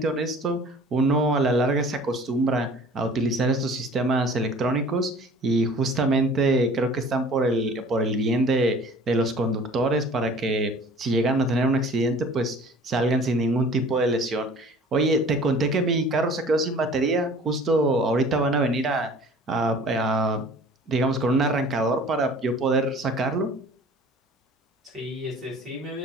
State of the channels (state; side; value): normal; both; correlation 0.47